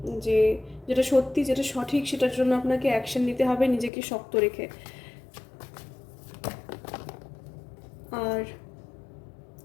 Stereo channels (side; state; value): right; drops out; at 3.9 s